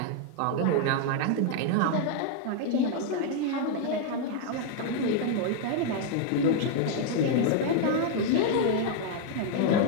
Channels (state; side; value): different; both; correlation 0.00